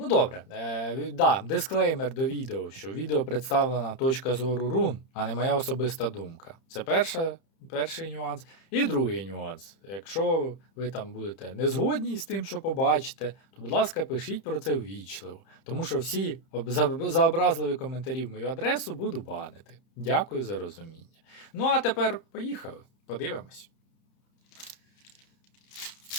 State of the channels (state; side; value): late; right; 30 ms